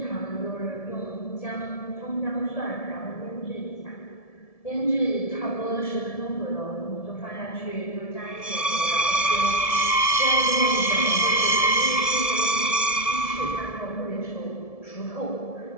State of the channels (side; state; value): right; late; 1.7 ms